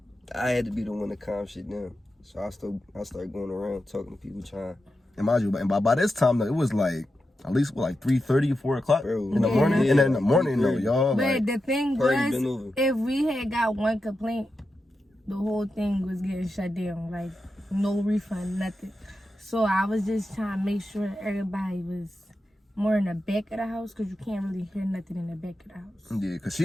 I had to be the one to calm shit down. So I started going around talking to people, trying. And mind you, and by this time though, it was like at least like 3:30, 4 o'clock in the Yeah. morning. And then in the morning though, y'all. But Like, the thing Party been was, over. if we had got one complaint, the whole thing was getting shut down. Like, no refund, nothing. So I was just trying to make sure everybody was more in the back of the house, because you can't really hear nothing in the back of the house. yeah, because she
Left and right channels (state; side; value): normal; both; correlation 0.89